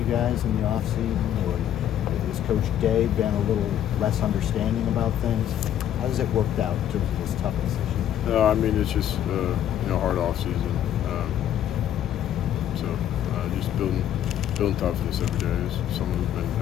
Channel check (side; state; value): right; quieter; 10.8 dB